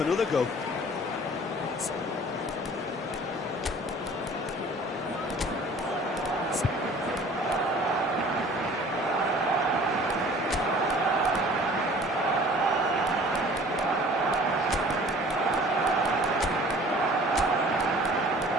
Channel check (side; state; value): both; normal; correlation 0.48